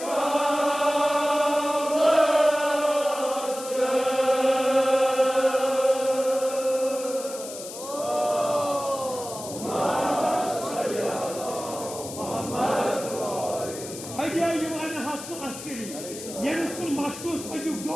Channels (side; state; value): left; noise; hiss, 12 dB below the sound